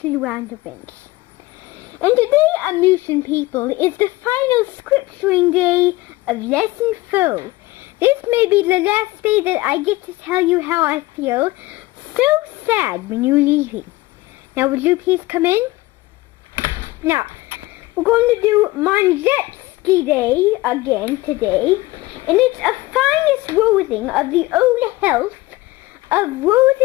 Roundabouts. And today, Unmusian people, is the final scripturing day of Lesson 4. This may be the last day that I get to tell you how I feel. So sad when you're leaving. Now, would you please come in? Now, we're going to do Manjetski Day again today, and it's a finest rothing of the old health of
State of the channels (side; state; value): right; quieter; 19.6 dB